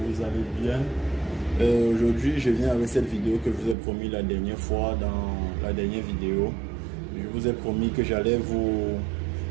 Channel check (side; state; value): left; drops out; at 3.8 s